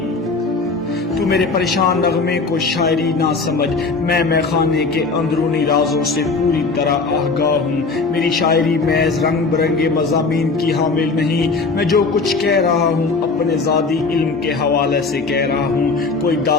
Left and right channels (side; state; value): right; quieter; 4.1 dB